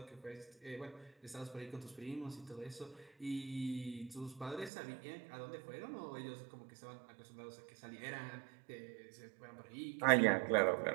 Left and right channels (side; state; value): left; drops out; at 4.7 s